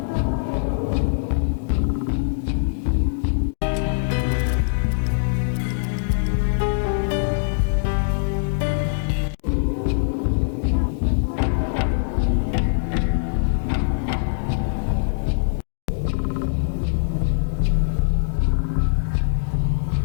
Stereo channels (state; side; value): silent; right; digital silence